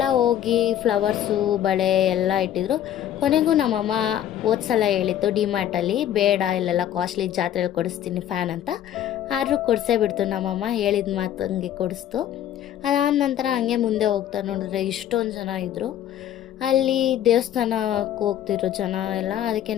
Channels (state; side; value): quieter; right; 11.1 dB